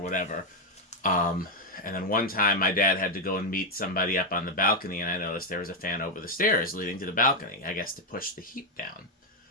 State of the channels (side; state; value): both; normal; correlation 0.03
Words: Um, and then one time my dad had to go and meet somebody up on the balcony, and I noticed there was a fan over the stairs leading to the balcony, I guess to push the heat down.